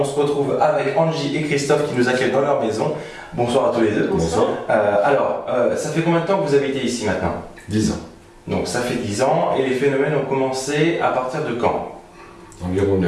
se retrouve avec Angie et Christophe qui nous accueillent dans leur maison. Bonsoir à tous les deux. Bonsoir. Ça fait combien de temps que vous habitez ici maintenant ? 10 ans. Donc ça fait 10 ans et les phénomènes ont commencé à partir de quand ? Environ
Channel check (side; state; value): both; identical; correlation 1.00